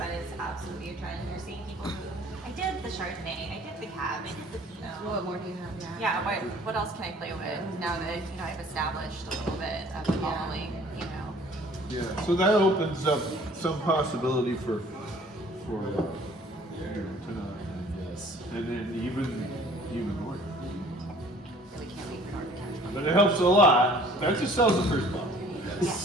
is absolutely a trend. You're seeing people who, I did the Chardonnay, I did the Cab, I did the Pinot. What more do you have? Yeah, what else can I play with now that, you know, I've established a little bit of a following, you know? yeah, so that opens up some possibility for you know, tonight, Yes. and then even more. We can't wait for Norton to catch up. But it helps a lot. That just sells the first bottle.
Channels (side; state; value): both; normal; correlation 0.53